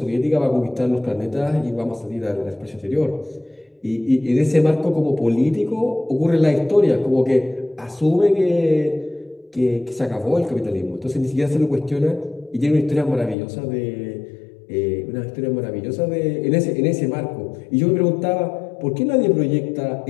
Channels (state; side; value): drops out; right; at 13.4 s